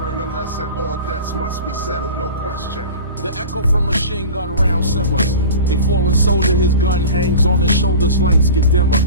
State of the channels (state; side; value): inverted; both; correlation -0.35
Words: a lesson, all debts must be settled, no question. The echo from machine gun round simmers. A fallen soldier, his gun hangs on his shoulders, lights get dimmer.